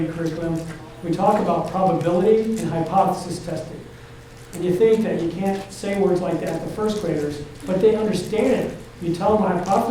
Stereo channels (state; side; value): identical; both; correlation 1.00